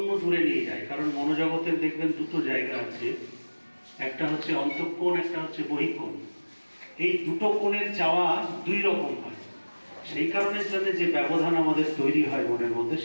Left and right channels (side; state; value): both; inverted; correlation -1.00